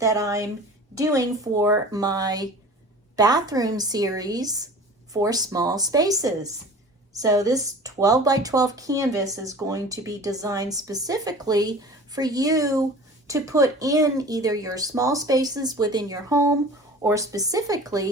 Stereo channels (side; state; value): both; normal; correlation 0.41